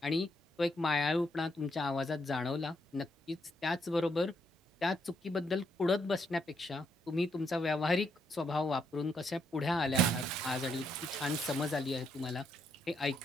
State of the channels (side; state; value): both; normal; correlation 0.76